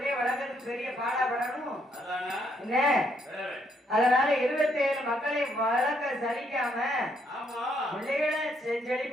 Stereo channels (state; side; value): normal; both; correlation 0.72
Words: வளர்க்கறதுக்கு பெரிய பாடாபடணும் என்ன? அதனால 27 மக்களை வளர்க்க சலிக்காம பிள்ளைகளை